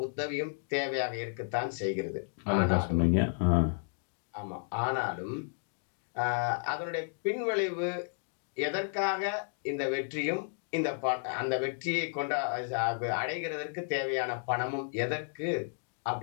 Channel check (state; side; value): silent; right; digital silence